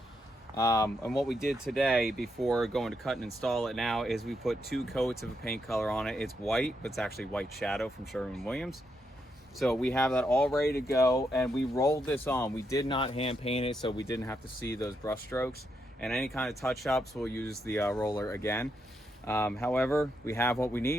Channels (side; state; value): both; normal; correlation 0.80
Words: And what we did today before going to cut and install it now is we put 2 coats of a paint color on it. It's white, but it's actually white shadow from Sherwin-Williams. So we have that all ready to go, and we rolled this on. We did not hand paint it, so we didn't have to see those brush strokes. And any kind of touch-ups, we'll use the roller again. However, we have what we